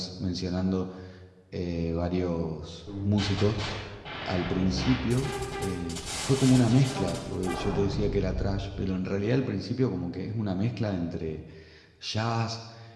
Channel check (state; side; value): identical; both; correlation 1.00